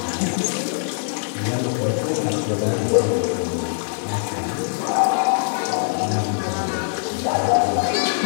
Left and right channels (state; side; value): silent; right; 61 dB below the other